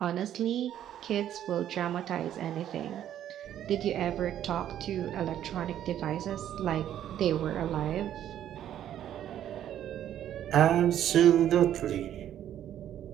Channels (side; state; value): left; quieter; 11.0 dB